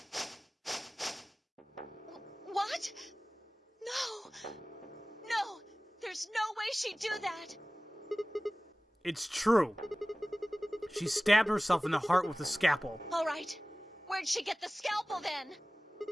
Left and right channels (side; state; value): both; normal; correlation 0.98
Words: What? No, there's no way she'd do that. It's true. She stabbed herself in the heart with a scalpel. All right. Where'd she get the scalpel then?